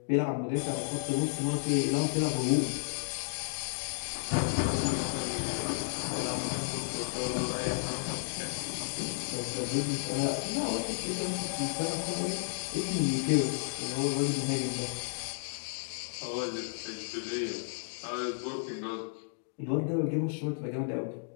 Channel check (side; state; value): right; silent; digital silence